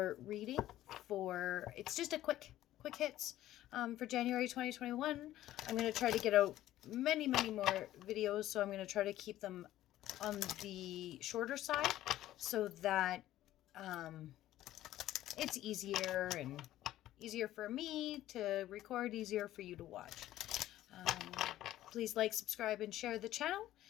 reading for, it's just a quick hits for January 2021. I'm going to try to get out many more videos, so I'm going to try to keep them on the shorter side so that it's easier for me to record, easier for you to watch. Please like, subscribe, and share the channel.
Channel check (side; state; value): right; quieter; 14.0 dB